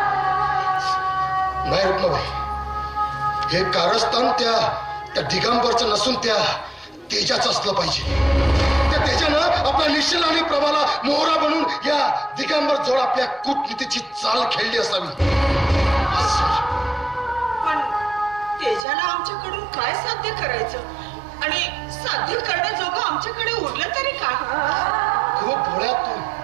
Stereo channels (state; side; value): drops out; left; at 18.9 s